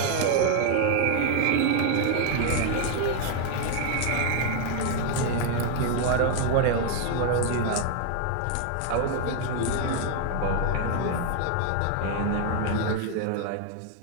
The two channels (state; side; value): different; both; correlation 0.00